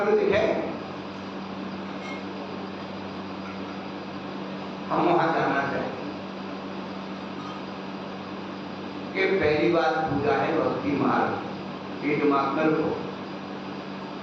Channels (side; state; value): both; identical; correlation 1.00